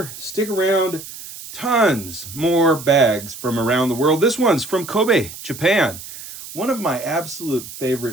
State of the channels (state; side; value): noise; right; hiss, 13 dB below the sound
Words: stick around. Tons more bags from around the world. This one's from Kobe, Japan. One of my absolute